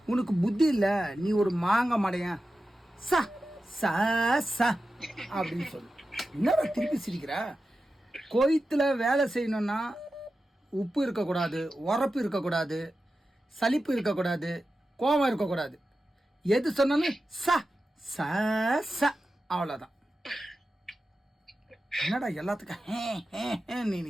உனக்கு புத்தி இல்லை, நீ ஒரு மாங்க மடையன், சா சா சா அப்படின்னு சொல்லு. என்னடா திருப்பி சிரிக்கிற? கோயத்துல வேலை செய்யணும்னா உப்பு இருக்கக்கூடாது, உரப்பு இருக்கக்கூடாது, சலிப்பு இருக்கக்கூடாது, கோபம் இருக்கக்கூடாது. எது சொன்னாலும் ச ச ச அவ்வளோதான். என்னடா எல்லாத்துக்கும் நீ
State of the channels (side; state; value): both; normal; correlation 0.92